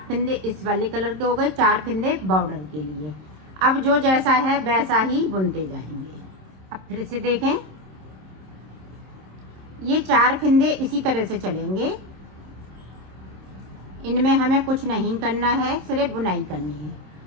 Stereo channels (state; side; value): late; left; 26 ms